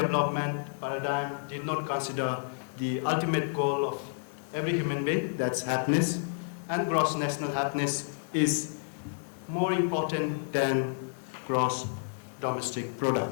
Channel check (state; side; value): silent; right; digital silence